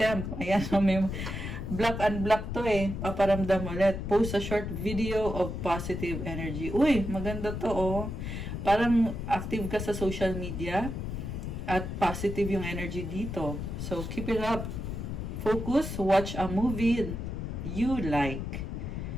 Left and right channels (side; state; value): left; noise; rumble, 5 dB below the sound